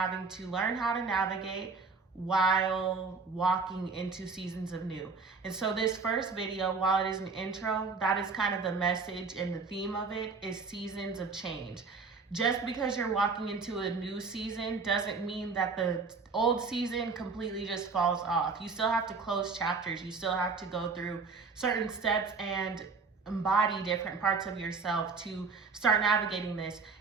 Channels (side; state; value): left; quieter; 4.6 dB